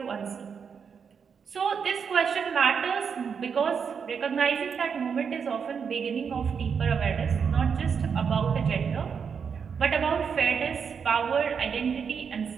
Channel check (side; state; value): left; quieter; 6.5 dB